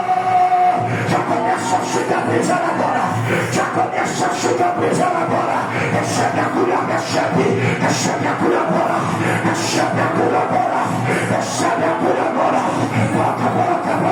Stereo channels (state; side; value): identical; both; correlation 1.00